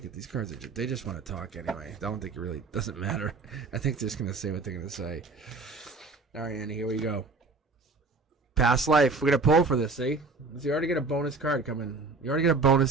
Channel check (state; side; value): quieter; left; 4.0 dB